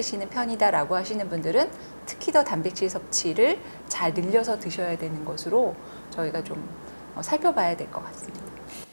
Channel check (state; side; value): inverted; both; correlation -1.00